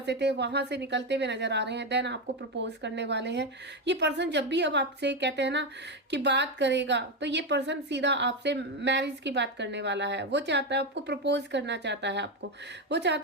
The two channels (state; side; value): normal; both; correlation 0.10